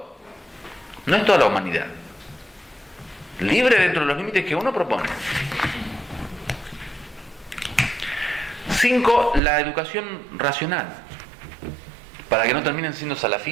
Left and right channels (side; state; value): left; drops out; at 9.4 s